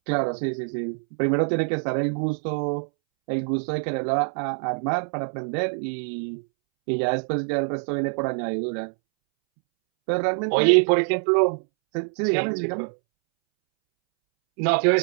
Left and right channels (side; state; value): left; silent; 62 dB below the other